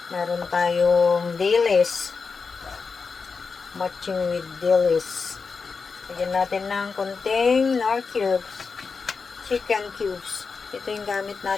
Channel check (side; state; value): right; quieter; 4.9 dB